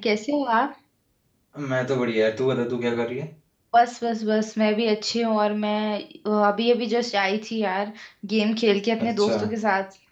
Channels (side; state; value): both; identical; correlation 1.00